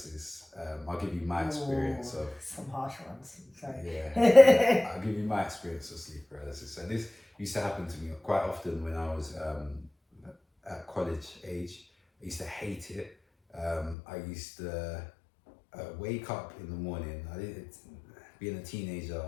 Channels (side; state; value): right; drops out; at 14.0 s